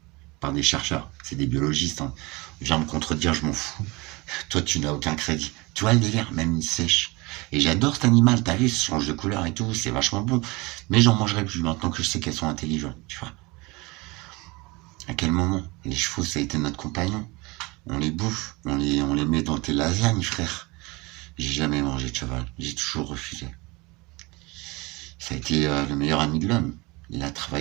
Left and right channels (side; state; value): left; quieter; 24.3 dB